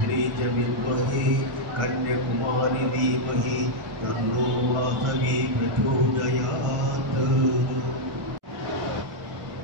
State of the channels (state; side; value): late; left; 1.6 ms